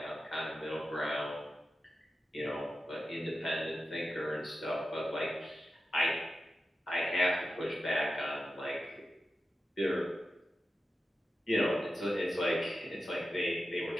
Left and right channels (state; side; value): normal; both; correlation 0.91